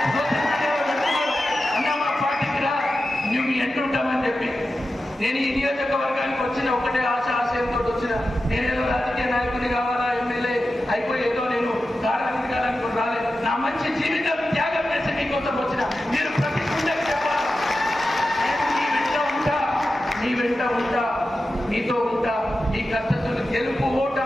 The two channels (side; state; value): both; normal; correlation 0.92